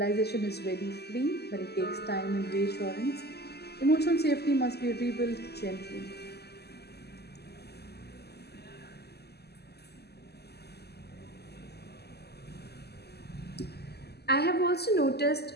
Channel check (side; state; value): right; late; 0.47 ms